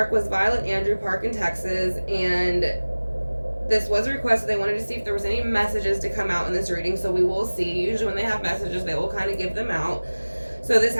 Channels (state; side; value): inverted; both; correlation -1.00